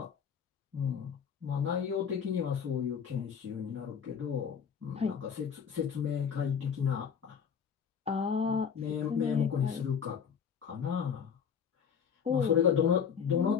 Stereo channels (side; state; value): right; quieter; 7.1 dB